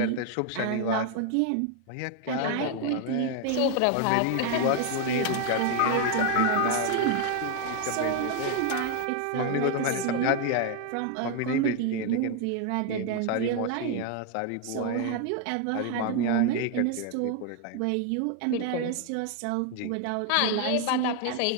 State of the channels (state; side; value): different; both; correlation 0.00